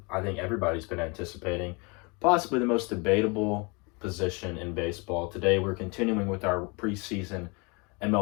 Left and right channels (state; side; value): quieter; right; 29.9 dB